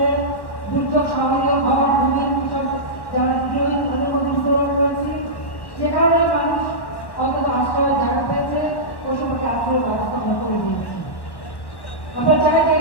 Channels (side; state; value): right; late; 1.1 ms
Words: দুর্যোগ সহনীয় ঘর ভূমি কৃষক যারা তাদের মধ্যে বিতরণ করেছি, যে কারণে মানুষ অন্তত আশ্রয়ের জায়গা পেয়েছে, ওই সময়কে আশ্রয়ের ব্যবস্থা আমরা করে দিয়েছি। আমরা চাই যে